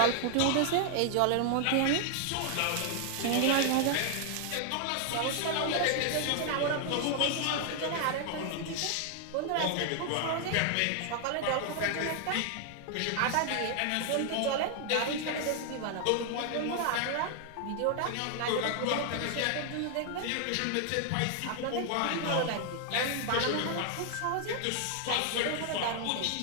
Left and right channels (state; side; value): different; both; correlation 0.00